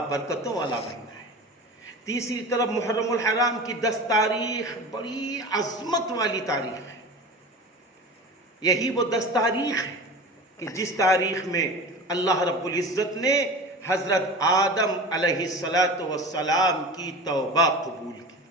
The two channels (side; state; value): both; normal; correlation 0.34